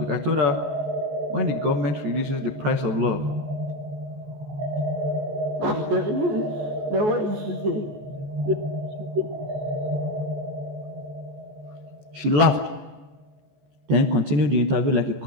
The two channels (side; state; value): left; late; 14 ms